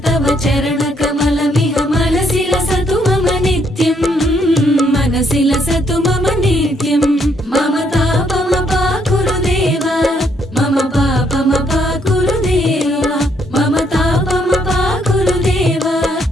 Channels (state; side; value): normal; both; correlation 0.71